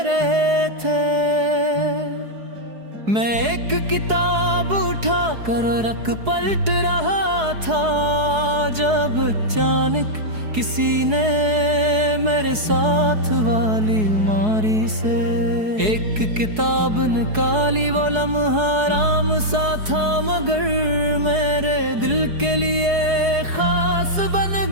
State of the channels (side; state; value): left; late; 4.7 ms